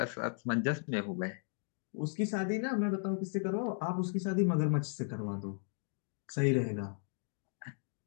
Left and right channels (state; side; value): silent; right; 54 dB below the other